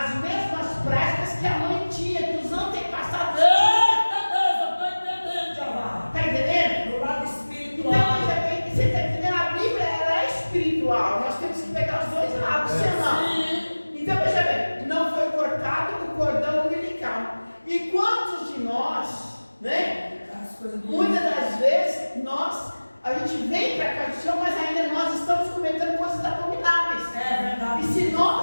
mesmas práticas que a mãe tinha, que os antepassados tinham. Tá entendendo? Do lado espiritual. Então, veja bem, você tá entendendo? A Bíblia, ela é espiritual, nós temos que pegar os dois lados, senão. Então, veja bem, não foi cortado o cordão umbilical. E quantos de nós, né? Muitas das vezes, a gente vem para cá do Senhor, mas ainda nós estamos cometendo coisas abomináveis. É verdade. E se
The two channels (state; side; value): inverted; both; correlation -1.00